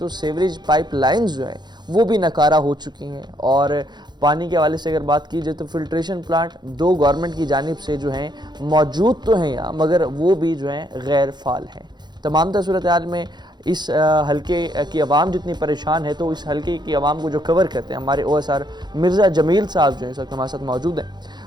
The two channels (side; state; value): left; late; 0.21 ms